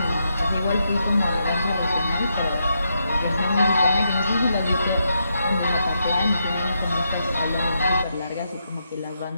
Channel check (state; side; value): inverted; both; correlation -0.81